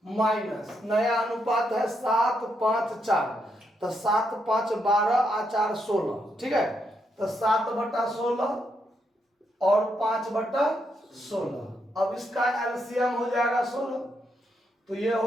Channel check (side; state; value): both; normal; correlation 0.79